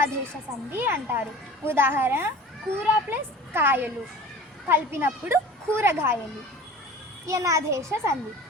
సంధి అంటారు. ఉదాహరణ: కూర ప్లస్ కాయలు కలిపినప్పుడు కూరగాయలు. యనాదేశ సంధి.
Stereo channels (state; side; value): normal; both; correlation 0.40